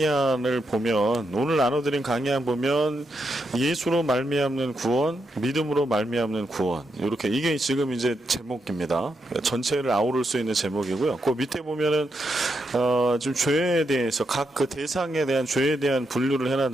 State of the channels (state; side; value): normal; both; correlation 0.82